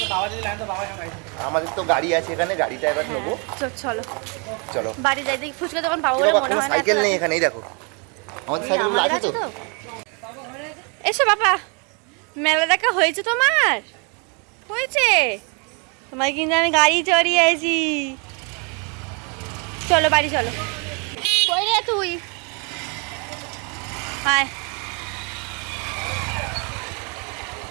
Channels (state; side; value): quieter; left; 34.0 dB